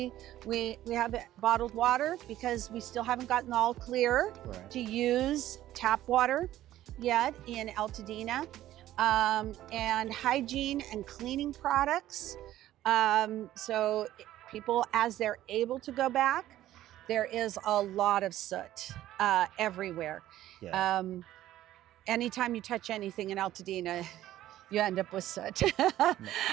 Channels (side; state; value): left; quieter; 13.8 dB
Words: we have bottled water because we still haven't gotten all clear to use tap water yet in Pasadena, and hygiene and cleaning products. So people, as they're able to go back, there is a lot of soot everywhere. Yeah. Anytime you touch anything in Pasadena, you end up with soot.